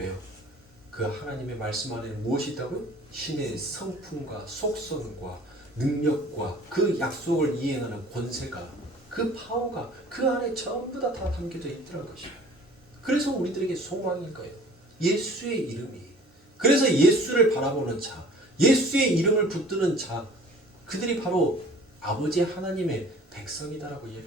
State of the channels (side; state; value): both; normal; correlation 0.48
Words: 그 하나님의 말씀 안에 무엇이 있다고요? 신의 성품과 속성과 능력과 그 약속을 이행하는 권세가, 그 파워가 그 안에 전부 다 담겨져 있더라는 것입니다. 그래서 우리들에게 소망인 거예요. 예수의 이름이. 그래서 예수를 바라보는 자, 예수의 이름을 붙드는 자, 그들이 바로 아버지 하나님의 백성이다라고